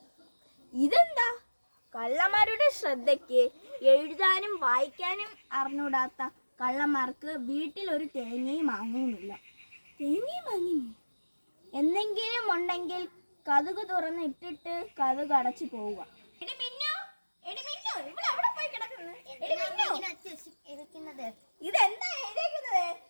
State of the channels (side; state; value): both; inverted; correlation -1.00